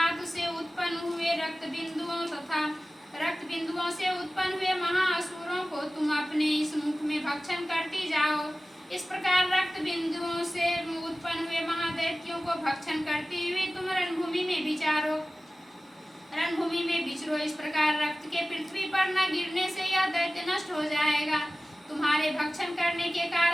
से उत्पन्न हुए रक्त बिंदुओं से उत्पन्न हुए महाअसुरों को तुम अपने इस मुख में भक्षण करती जाओ। इस प्रकार रक्त बिंदुओं से उत्पन्न हुए महादैत्यों को भक्षण करती हुई तुम रणभूमि में विचरो। इस प्रकार रक्त के पृथ्वी पर न गिरने से यह दैत्य नष्ट हो जाएगा। तुम्हारे भक्षण करने के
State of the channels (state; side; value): normal; both; correlation 0.96